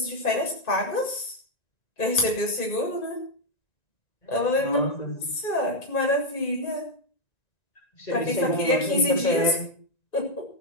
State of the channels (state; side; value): late; right; 1.9 ms